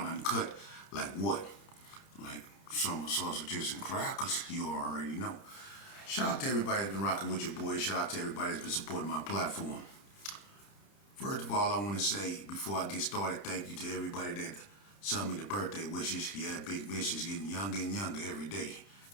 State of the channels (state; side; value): late; right; 30 ms